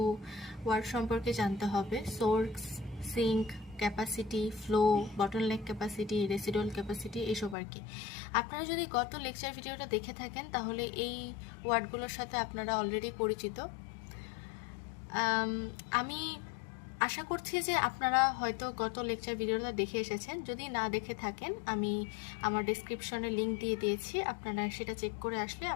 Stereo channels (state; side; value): drops out; right; at 7.6 s